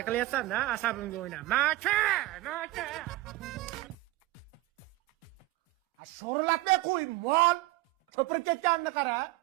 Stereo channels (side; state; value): left; quieter; 18.5 dB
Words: qilyapsan-da, asabimga o'yna. Maka! Sho'rlatmay qo'y, mol. Ko'pirib ketganini qara.